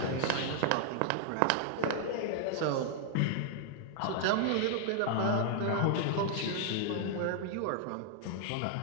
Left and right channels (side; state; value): both; different; correlation 0.00